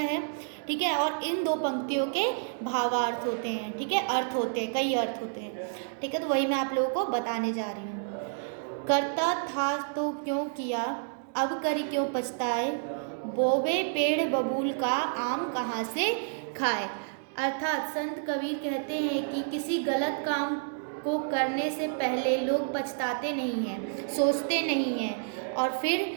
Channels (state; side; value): silent; left; digital silence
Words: ठीक है, और इन दो पंक्तियों के भावार्थ होते हैं। ठीक है, अर्थ होते हैं, कई अर्थ होते हैं। ठीक है, तो वही मैं आप लोगों को बताने जा रही हूँ। करता था तो क्यों किया, अब करी क्यों पछताए, बोवे पेड़ बबूल का आम कहाँ से खाए। अर्थात संत कबीर कहते हैं कि किसी गलत काम को करने से पहले लोग पछताते नहीं हैं, सोचते नहीं हैं, और